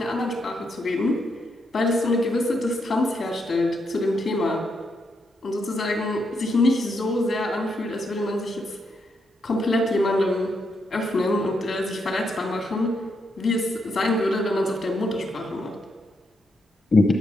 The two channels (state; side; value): normal; both; correlation 0.80